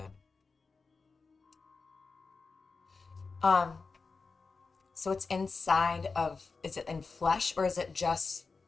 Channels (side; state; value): right; quieter; 4.4 dB